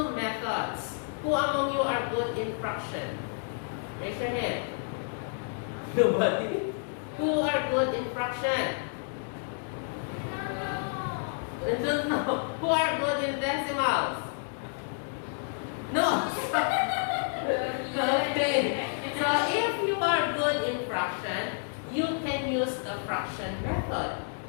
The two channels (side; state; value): right; silent; 58 dB below the other